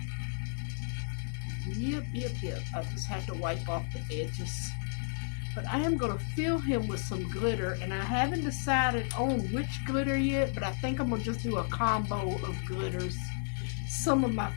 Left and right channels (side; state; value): right; silent; 56 dB below the other